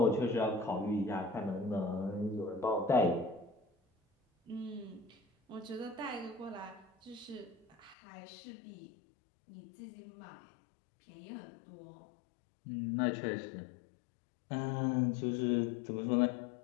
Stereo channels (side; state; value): right; drops out; at 8.0 s